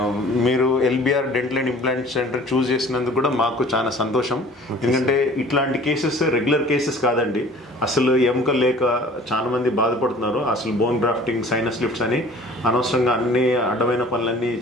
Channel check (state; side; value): normal; both; correlation 0.48